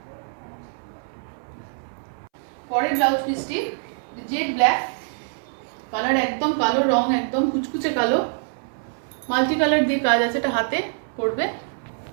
পরের ব্লাউজ পিসটি জেড ব্ল্যাক কালার, একদম কালো রং, একদম কুচকুচে কালো, মাল্টি কালার দিয়ে কাজ আছে। এটা হাতে পড়বে,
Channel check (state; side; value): silent; left; 62 dB below the other